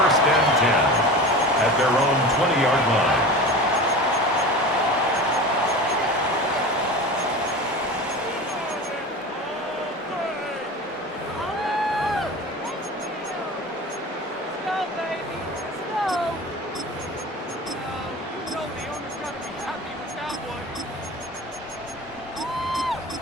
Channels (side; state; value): both; normal; correlation 0.33